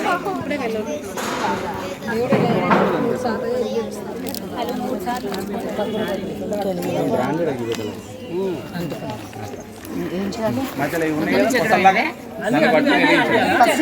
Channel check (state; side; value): identical; both; correlation 1.00